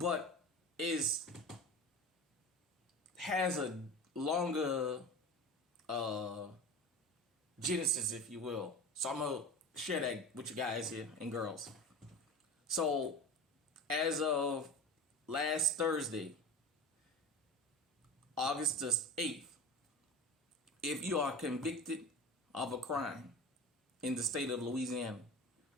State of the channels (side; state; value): both; normal; correlation 0.33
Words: has a longer genesis, if you will. So I'm going to share that with you guys here and girls. So as of last Thursday, August the 8th, if you are convicted of a crime in the state of Louisiana,